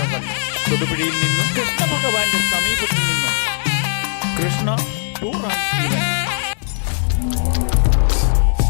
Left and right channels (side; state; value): right; silent; digital silence